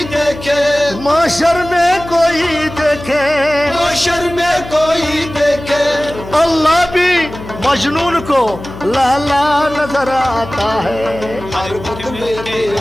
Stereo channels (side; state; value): left; noise; hum, 13 dB below the sound